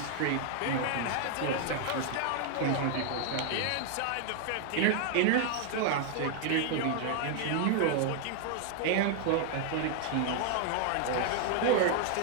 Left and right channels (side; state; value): both; different; correlation 0.00